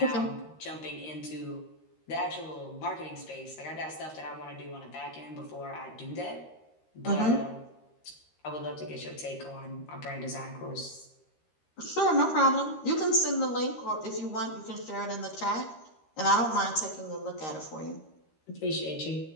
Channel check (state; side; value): late; right; 13 ms